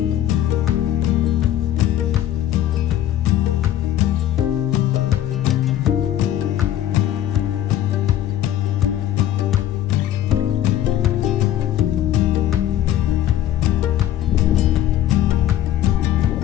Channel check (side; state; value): right; quieter; 12.1 dB